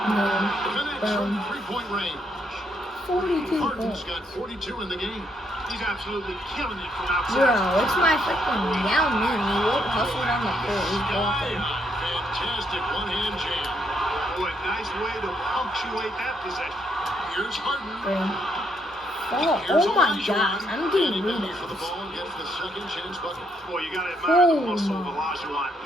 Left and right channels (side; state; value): both; normal; correlation 0.74